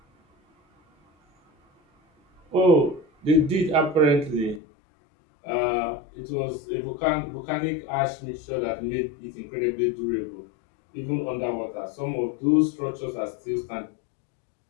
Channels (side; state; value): right; drops out; at 4.6 s